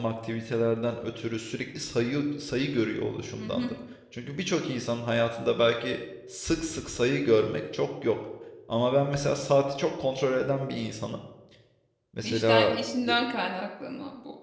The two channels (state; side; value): identical; both; correlation 1.00